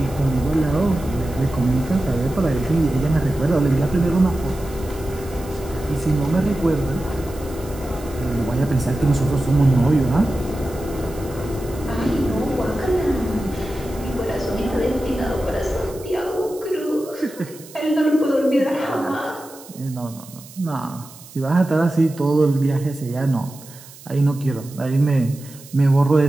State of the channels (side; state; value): right; noise; hiss, 20 dB below the sound